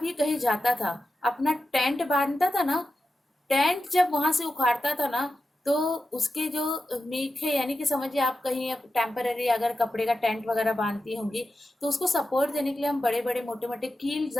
یہ کہیں جاتا تھا اپنا ٹینٹ باندھتا تھا نا، ٹینٹ جب وہاں سے اکھاڑتا تھا نا، تو اس کے جو میخیں، یعنی کہ سمجھیے آپ کہیں ٹیمپرری اگر کپڑے کا ٹینٹ وغیرہ باندھتی ہوں گی تو اس کو سپورٹ دینے کے لیے ہم بڑے بڑے موٹے موٹے کیل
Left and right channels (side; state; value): both; normal; correlation 0.91